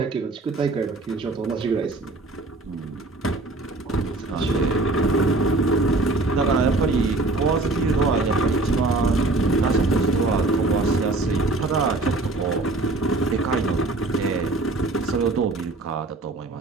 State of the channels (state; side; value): quieter; left; 3.0 dB